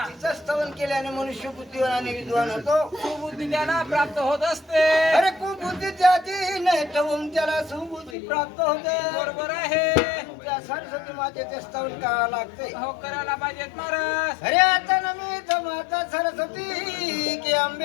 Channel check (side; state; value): right; drops out; at 8.2 s